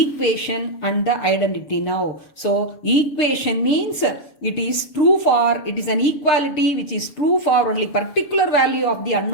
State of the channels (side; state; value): right; late; 7.0 ms